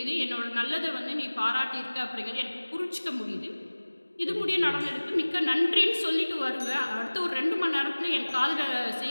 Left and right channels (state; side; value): inverted; both; correlation -1.00